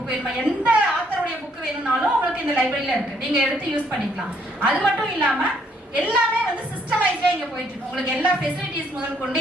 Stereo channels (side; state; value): both; normal; correlation 0.68